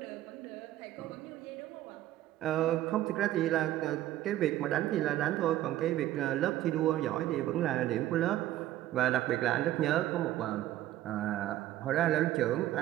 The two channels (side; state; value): left; quieter; 14.0 dB